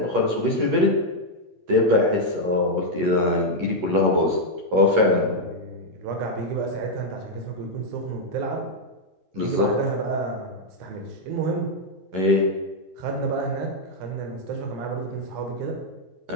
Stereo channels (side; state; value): left; late; 11 ms